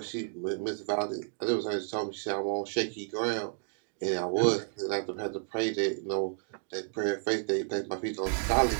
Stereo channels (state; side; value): silent; left; 57 dB below the other